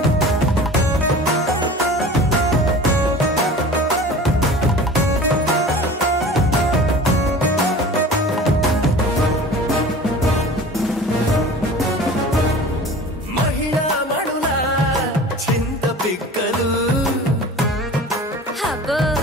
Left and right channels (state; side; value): normal; both; correlation 0.40